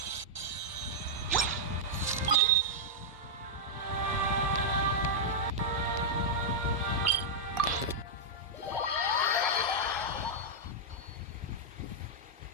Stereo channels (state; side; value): normal; both; correlation -0.07